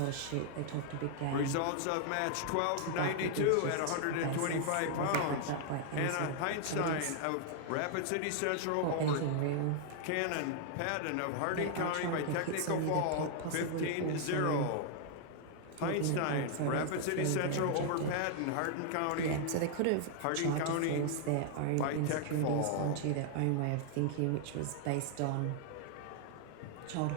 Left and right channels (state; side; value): different; both; correlation 0.00